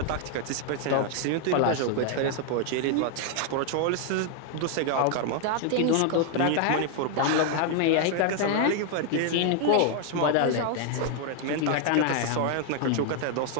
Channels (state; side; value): different; both; correlation 0.00